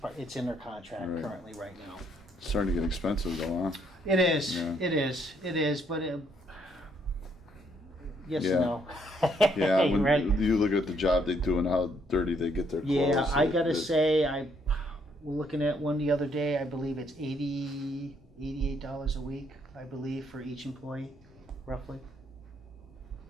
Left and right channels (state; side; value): normal; both; correlation 0.70